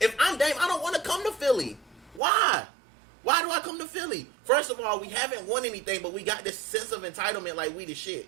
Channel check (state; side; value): drops out; left; at 2.2 s